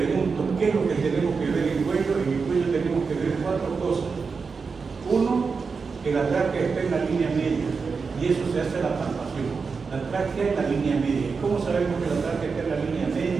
qué es lo que tenemos que ver en el cuello tenemos que ver 4 cosas. Uno, que la tráquea está en la línea media, y eso se hace a la palpación. La tráquea en la línea media. ¿Cómo sabemos que la tráquea está en la línea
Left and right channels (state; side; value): quieter; left; 5.0 dB